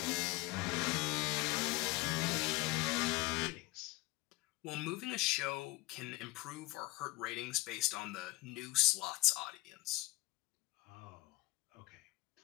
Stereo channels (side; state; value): right; quieter; 19.7 dB